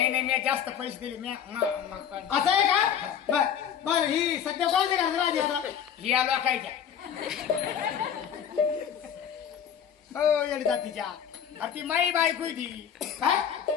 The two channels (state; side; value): quieter; right; 8.6 dB